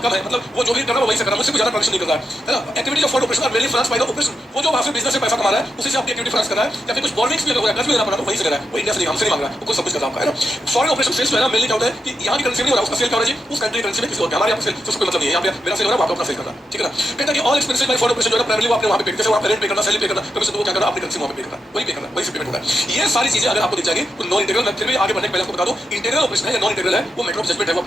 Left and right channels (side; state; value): both; normal; correlation 0.85